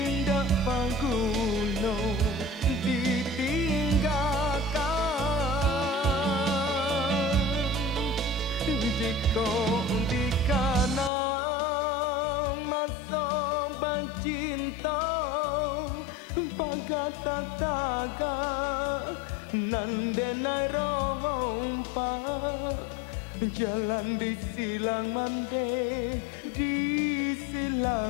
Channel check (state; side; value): drops out; right; at 11.1 s